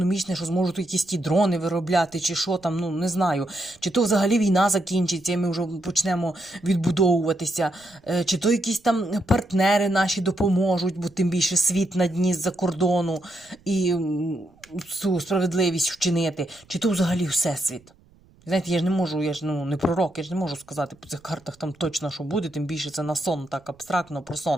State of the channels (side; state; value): right; noise; rumble, 29 dB below the sound